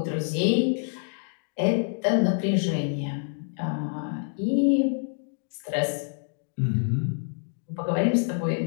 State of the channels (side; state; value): right; silent; 58 dB below the other